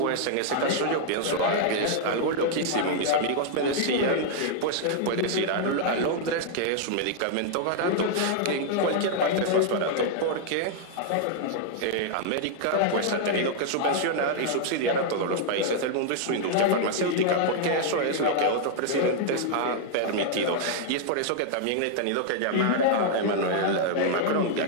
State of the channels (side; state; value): both; different; correlation -0.01